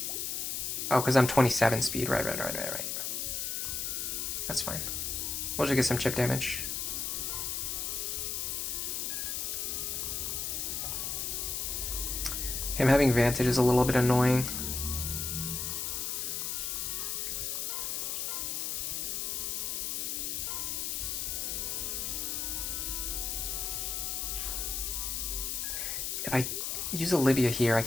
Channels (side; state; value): left; noise; hiss, 1 dB below the sound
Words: Oh, because I'm 27 speed. Right. That's fine. We'll just get some chip damage. Him having Vantage is a little bit annoying. If I use Olivia here, I